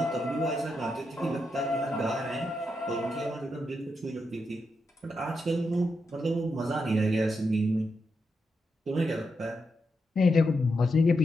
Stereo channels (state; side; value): normal; both; correlation 0.84